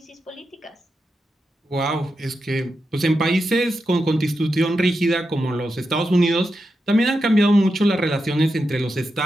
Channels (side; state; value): both; normal; correlation 0.88